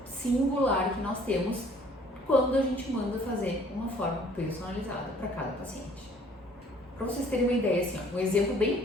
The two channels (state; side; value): normal; both; correlation 0.56